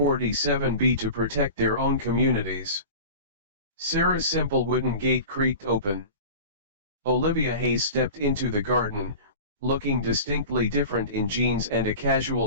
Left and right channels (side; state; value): both; inverted; correlation -0.35